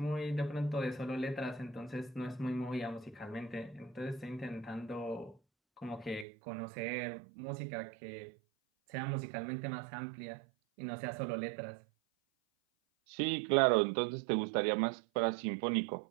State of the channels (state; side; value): drops out; left; at 6.2 s